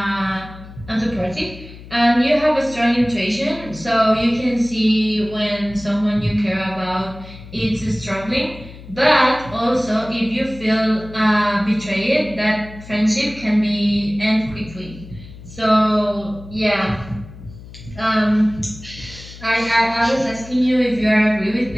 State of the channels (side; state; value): left; noise; hum, 17 dB below the sound